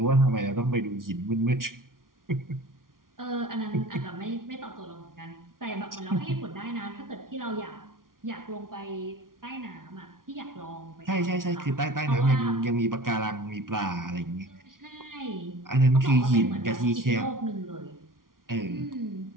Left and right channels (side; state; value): left; late; 0.91 ms